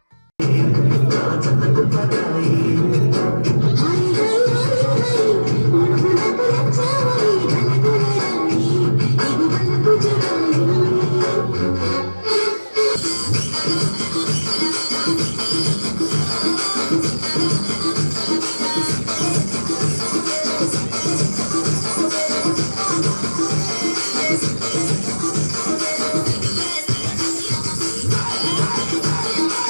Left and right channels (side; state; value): both; inverted; correlation -1.00